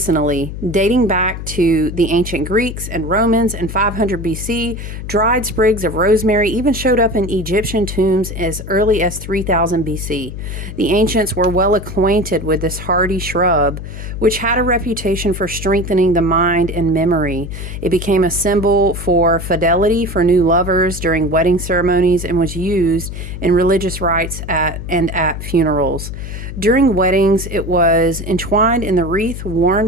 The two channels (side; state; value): left; noise; hum, 8 dB below the sound